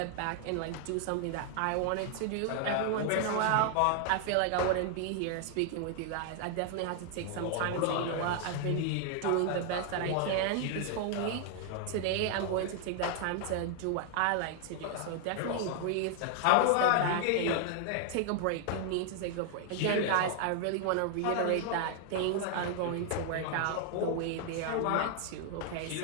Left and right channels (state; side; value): different; both; correlation 0.00